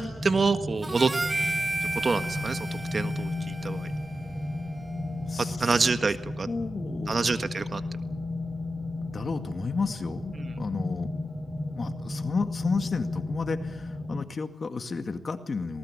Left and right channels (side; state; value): both; normal; correlation 0.90